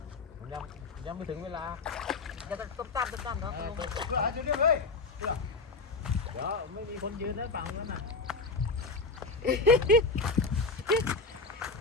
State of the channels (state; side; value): quieter; right; 3.7 dB